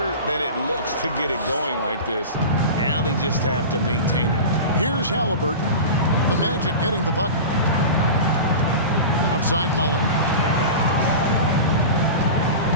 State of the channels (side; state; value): both; inverted; correlation -0.31